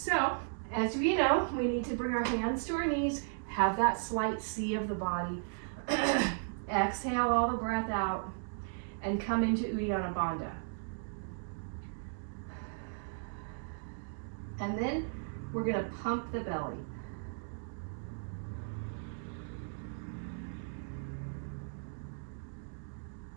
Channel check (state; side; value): silent; left; digital silence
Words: as we know, we need to bring our hands to our knees, have that slight C of the body, exhale all the breath out, and come into Uddiyana Bandha. And then we're going to pump the belly.